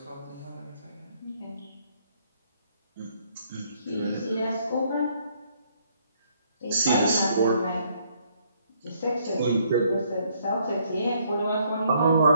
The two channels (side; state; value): both; inverted; correlation -0.68